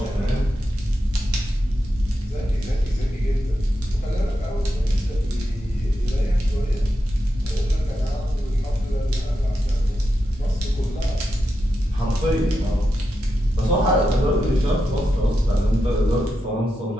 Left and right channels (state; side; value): normal; both; correlation 0.87